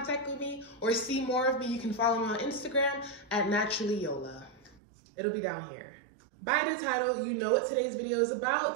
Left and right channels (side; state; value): left; drops out; at 4.8 s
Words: with me or see more of me, you can follow me on Instagram at naturallyyola. It'll be down here. By the title, you know what today's video is